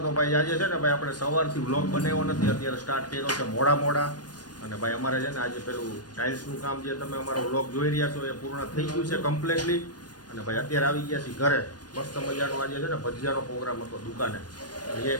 તો ભાઈ આજે છે ને ભાઈ આપણે સવારથી વ્લોગ બનાવ્યો નથી, અત્યારે સ્ટાર્ટ કર્યો છે મોડા અને ભાઈ અમારે છે ને આજે પેલું ટાઇલ્સનું કામ જે તમે અમારો વ્લોગ જોઈ રહ્યા છો એ પૂર્ણ થઈ ગયું છે કમ્પ્લીટલી. અને ભાઈ અત્યારે આવી ગયા છીએ ઘરે. મસ્ત મજાનો આજે છે ને ભજીયાનો પ્રોગ્રામ હતો દુકાને, એ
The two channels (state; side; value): late; right; 0.69 ms